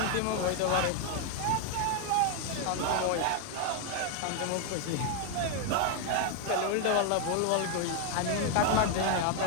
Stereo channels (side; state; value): both; different; correlation 0.01